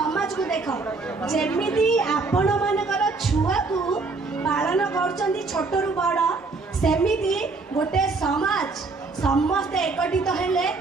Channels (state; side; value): quieter; left; 3.9 dB